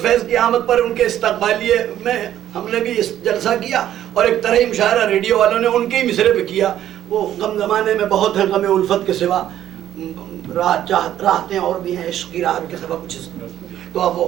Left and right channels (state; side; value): quieter; left; 11.6 dB